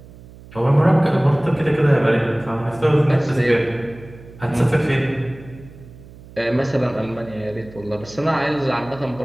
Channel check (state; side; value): noise; right; hum, 20 dB below the sound